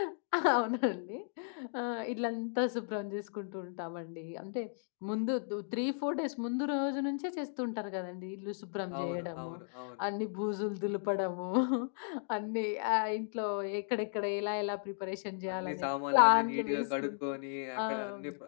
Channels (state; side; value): silent; right; digital silence